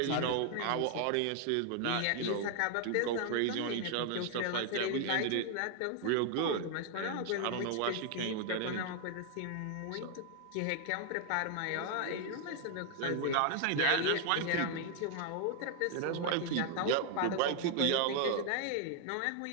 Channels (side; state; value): both; different; correlation 0.00